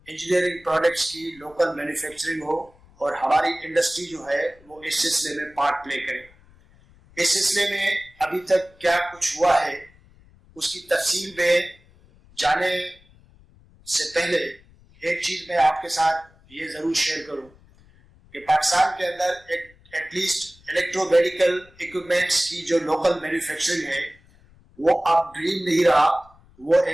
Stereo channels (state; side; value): noise; left; rumble, 28 dB below the sound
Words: इंजीनियरिंग प्रोडक्ट्स की लोकल मैन्युफैक्चरिंग हो और हमारी इंडस्ट्री जो है वो इस सिलसिले में पार्ट प्ले करे। इस सिलसिले में अभी तक क्या कुछ हुआ है उसकी तफसील में जाने से पहले एक चीज मैं आपके साथ ये जरूर शेयर करूं कि पाकिस्तान के अंदर एटलीस्ट इलेक्ट्रोमेडिकल इक्विपमेंट्स की जो लोकल मैन्युफैक्चरिंग है वो अब ड्रीम नहीं रहा, वो